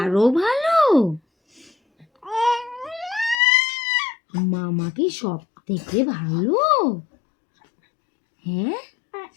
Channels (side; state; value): right; drops out; at 3.4 s